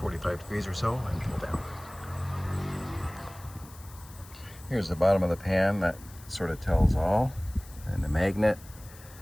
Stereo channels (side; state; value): left; noise; hiss, 21 dB below the sound